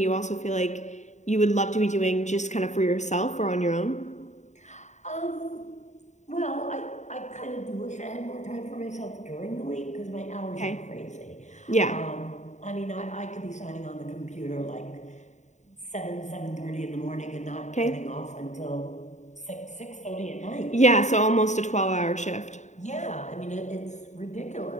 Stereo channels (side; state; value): right; late; 0.34 ms